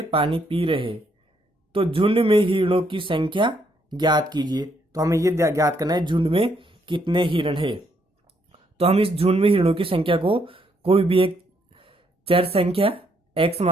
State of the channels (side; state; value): both; normal; correlation 0.73